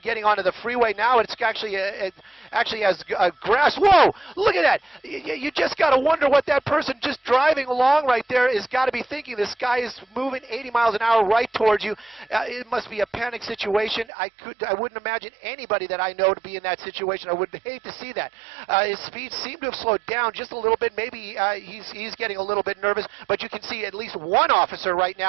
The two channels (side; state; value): left; drops out; at 14.1 s